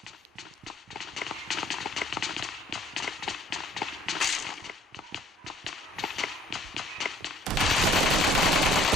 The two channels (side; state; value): both; normal; correlation 0.57